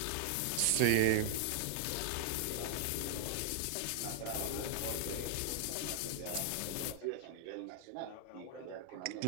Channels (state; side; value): different; both; correlation 0.00